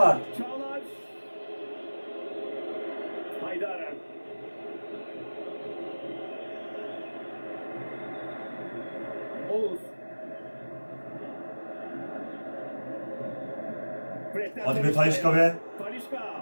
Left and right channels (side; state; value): both; inverted; correlation -1.00